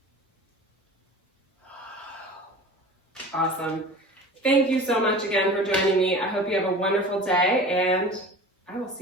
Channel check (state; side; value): normal; both; correlation 0.38